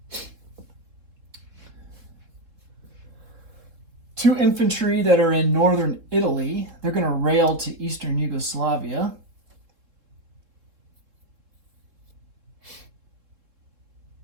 Two infantry that are in northern Italy, they're going to rail to Eastern Yugoslavia.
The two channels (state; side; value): late; left; 3.5 ms